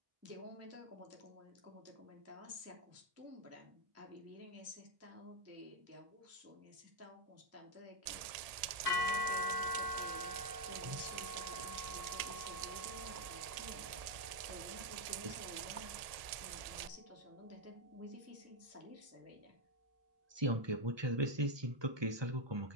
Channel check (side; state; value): left; late; 1.7 ms